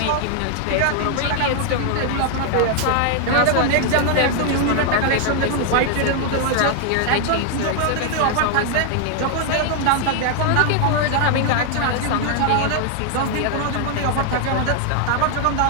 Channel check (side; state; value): both; different; correlation 0.00